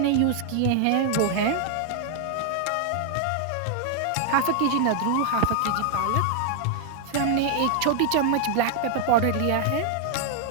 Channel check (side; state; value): both; different; correlation 0.00